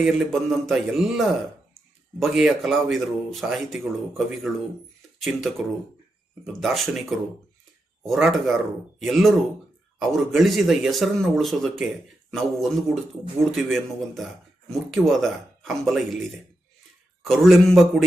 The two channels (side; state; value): both; normal; correlation 0.86